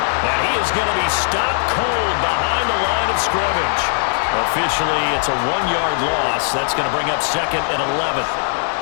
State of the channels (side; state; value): right; silent; digital silence